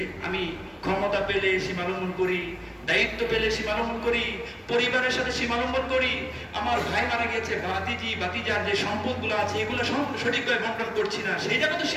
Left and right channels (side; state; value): both; identical; correlation 1.00